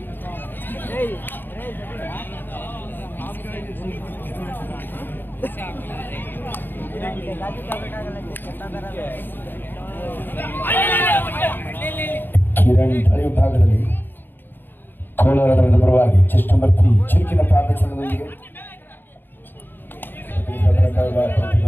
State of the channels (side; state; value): right; late; 0.094 ms